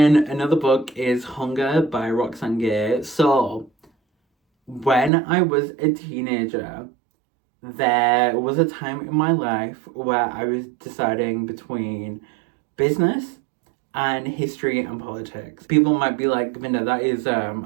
another book is Hunger by Roxane Gay. So when I was a teenager, there was a time in my life where I was deciding between business and history and politics. People might be like, Vinda, that is,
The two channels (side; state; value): left; drops out; at 5.1 s